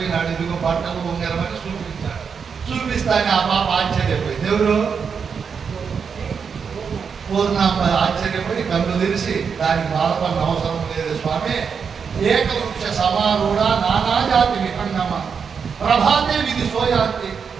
అడవిలో బట్టలు ఉంగరమని చూపించాడు. చూపిస్తానే ఆ పాప ఆశ్చర్యపోయింది. దేవుడు పూర్ణాంబ ఆశ్చర్యపడి కళ్ళు తెరిచి దానికి బాధపడిన అవసరం లేదు స్వామి. ఏకవృక్ష సమారూఢ నానాజాతి విహంగమ ప్రభాతే విధి సోయాంతి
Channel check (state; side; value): quieter; left; 6.2 dB